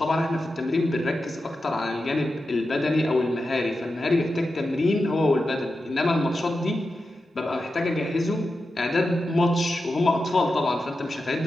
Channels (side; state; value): both; normal; correlation 0.90